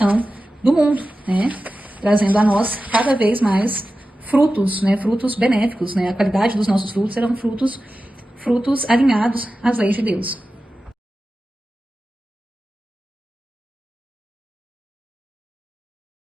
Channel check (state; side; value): normal; both; correlation 0.94